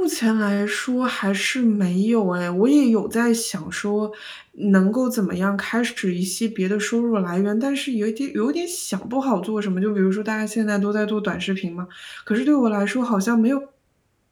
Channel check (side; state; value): both; identical; correlation 1.00